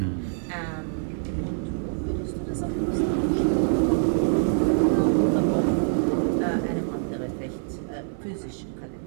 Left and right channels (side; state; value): left; silent; 61 dB below the other